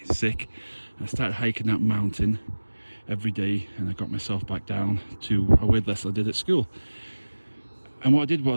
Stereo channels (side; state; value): both; inverted; correlation -1.00